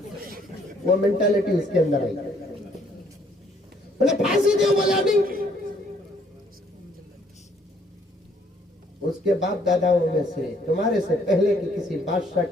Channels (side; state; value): both; normal; correlation 0.65